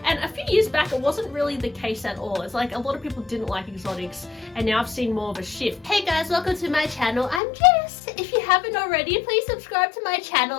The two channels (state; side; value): drops out; right; at 7.4 s